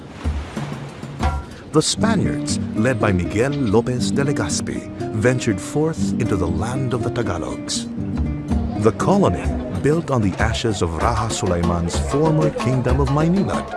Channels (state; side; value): identical; both; correlation 1.00